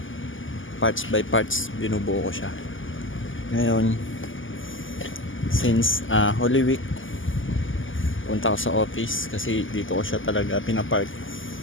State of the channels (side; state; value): right; late; 0.58 ms